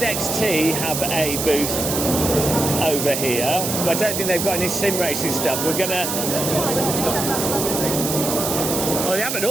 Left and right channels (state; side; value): noise; right; hiss, 2 dB below the sound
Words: have a booth over here. I don't think they've got any sim racing stuff. We're gonna... Oh, they have an